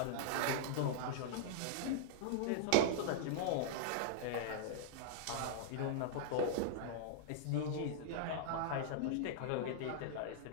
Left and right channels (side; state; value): both; different; correlation -0.01